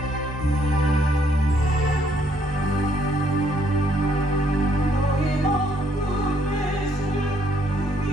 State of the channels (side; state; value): both; normal; correlation 0.69